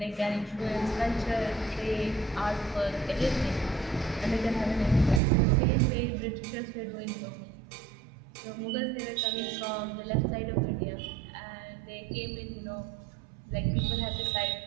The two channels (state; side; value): drops out; left; at 5.2 s